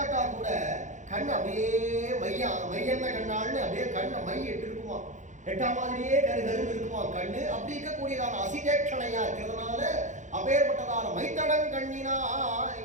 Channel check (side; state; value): left; late; 0.35 ms